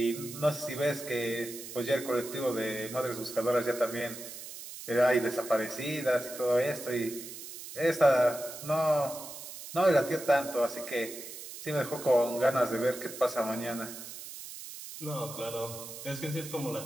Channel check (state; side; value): noise; right; hiss, 11 dB below the sound